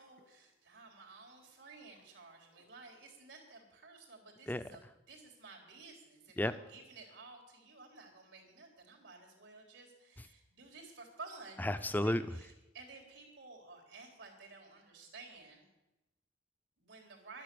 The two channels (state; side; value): normal; both; correlation 0.74